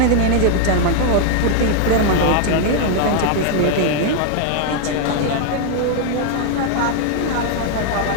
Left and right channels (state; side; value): different; both; correlation 0.00